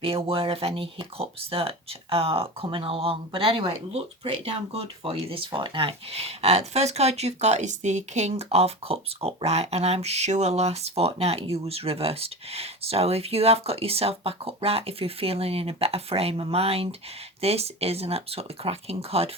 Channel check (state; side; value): normal; both; correlation 0.29